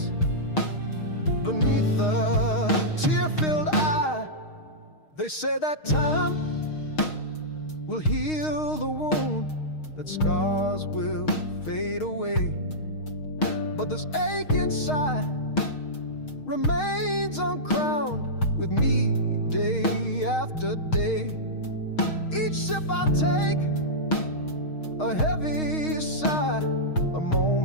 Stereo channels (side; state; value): right; late; 6.4 ms